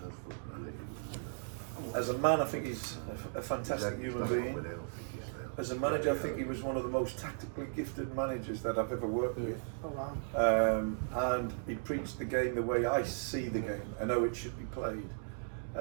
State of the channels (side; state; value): left; silent; digital silence